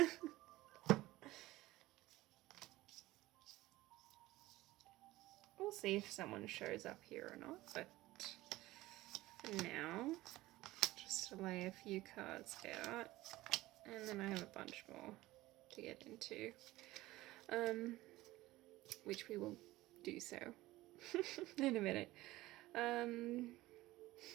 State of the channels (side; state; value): left; quieter; 17.8 dB